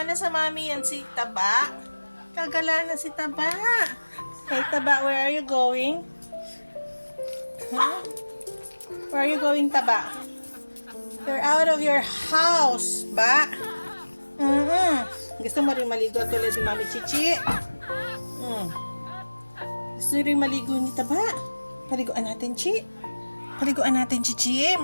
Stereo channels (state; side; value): inverted; both; correlation -1.00